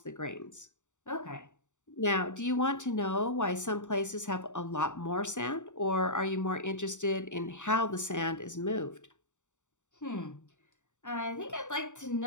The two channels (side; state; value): right; late; 0.85 ms